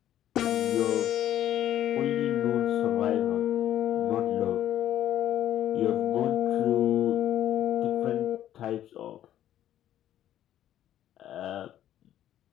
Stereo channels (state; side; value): quieter; right; 11.8 dB